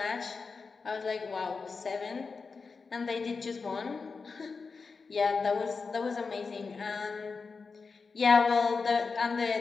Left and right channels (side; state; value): right; quieter; 4.7 dB